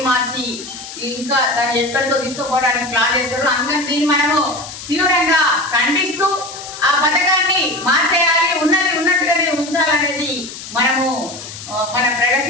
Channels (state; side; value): noise; left; hiss, 12 dB below the sound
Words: మార్చి ఇంకా దాన్ని ఎక్కడికో తీసుకుపోవడానికి ప్లాన్ చేస్తారు. అందుకని దీన్ని మనము తీవ్రంగా ఖండిస్తూ ఆ పథకాన్ని మార్చేయాలి, ఉన్నది ఉన్నట్టుగానే ఉంచాలనేది మనము మన